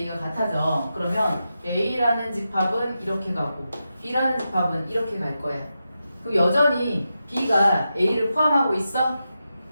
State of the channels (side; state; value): both; inverted; correlation -0.89